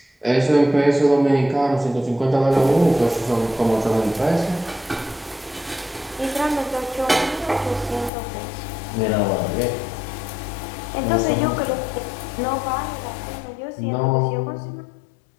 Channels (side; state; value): right; drops out; at 8.1 s